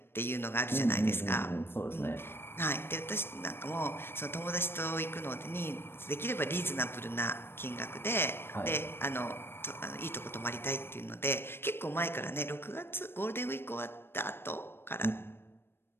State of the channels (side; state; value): right; late; 0.11 ms